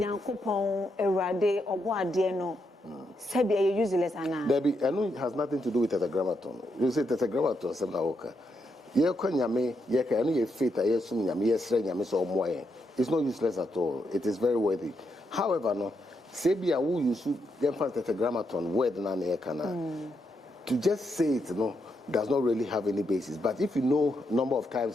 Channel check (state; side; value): normal; both; correlation 0.81